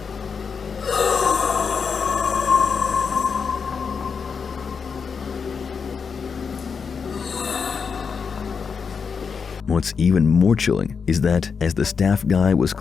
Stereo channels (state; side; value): quieter; right; 5.8 dB